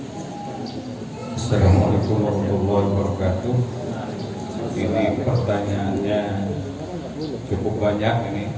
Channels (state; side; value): identical; both; correlation 1.00